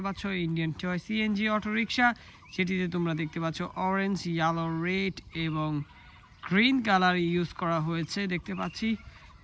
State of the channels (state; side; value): identical; both; correlation 1.00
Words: পাচ্ছ Indian toy CNG auto rickshaw, যেটিতে তোমরা দেখতে পাচ্ছ অরেঞ্জ, ইয়েলো, রেড এবং গ্রিন কালার ইউজ করা হয়েছে দেখতে পাচ্ছি।